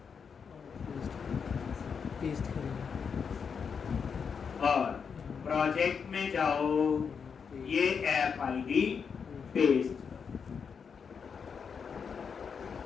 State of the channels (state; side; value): quieter; right; 6.3 dB